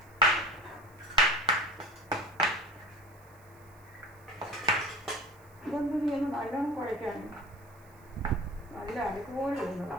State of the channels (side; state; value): right; noise; hiss, 29 dB below the sound